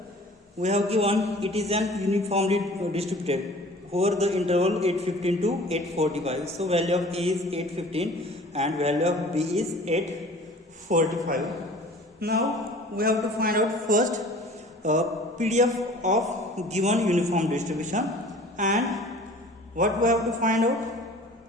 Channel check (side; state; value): both; normal; correlation 0.46